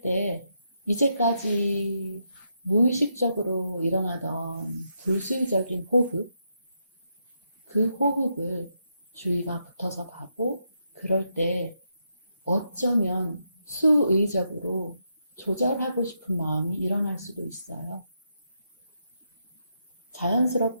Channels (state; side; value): inverted; both; correlation -0.81